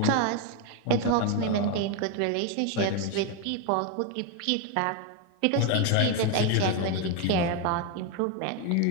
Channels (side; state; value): both; different; correlation 0.02